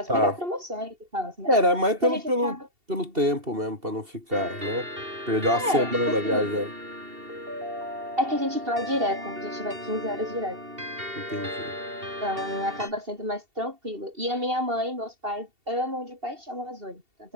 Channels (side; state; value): left; late; 2.7 ms